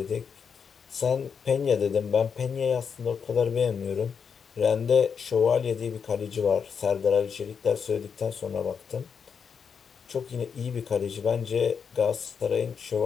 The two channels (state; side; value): quieter; right; 6.5 dB